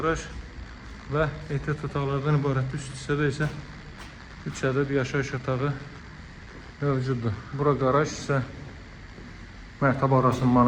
və ehtiyat otaqlardan ibarət. Üst hissədə isə 3 ədəd yaşayış otağı mövcuddur. Bura qaraj isə mərtəbə arası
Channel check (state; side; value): identical; both; correlation 1.00